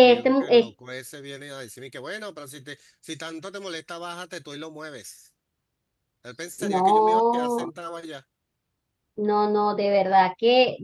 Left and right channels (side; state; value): both; identical; correlation 1.00